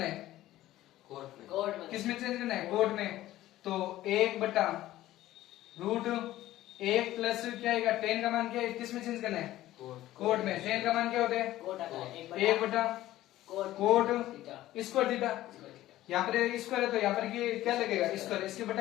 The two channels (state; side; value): quieter; right; 15.0 dB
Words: है, कोट में। किस में चेंज करना है, कोट में। तो 1 बटा रूट 1 प्लस क्या आएगा, 10 का मान क्या है, किस में चेंज करना है, कोट में। 10 का मान क्या होता है, कोट आता है 1 बटा कोट स्क्वायर थीटा। यहाँ पर स्क्वायर है तो यहाँ पर क्या लगेगा, स्क्वायर। इसके